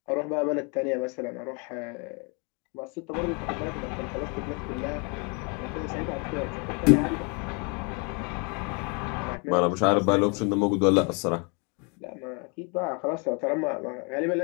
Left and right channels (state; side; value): quieter; right; 34.1 dB